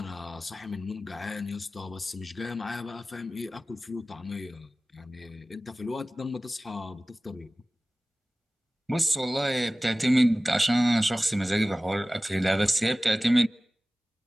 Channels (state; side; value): normal; both; correlation 0.97